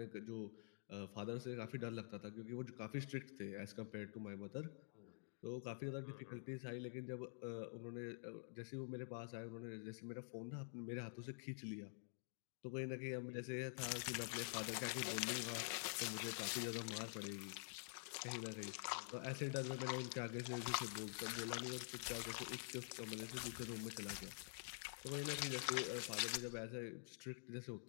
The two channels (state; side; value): silent; right; digital silence